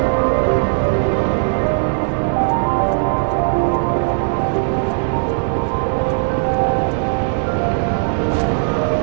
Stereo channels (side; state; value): left; silent; digital silence